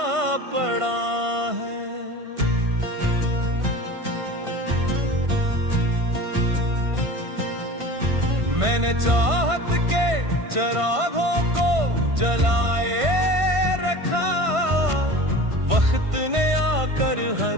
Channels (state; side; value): late; left; 1.5 ms